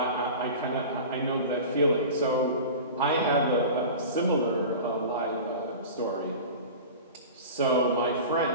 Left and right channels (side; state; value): both; inverted; correlation -0.34